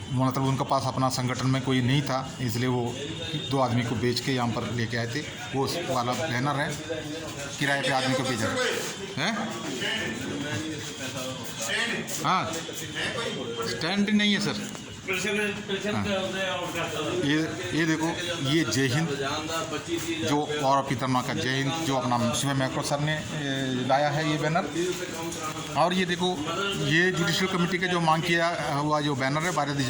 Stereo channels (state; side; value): identical; both; correlation 1.00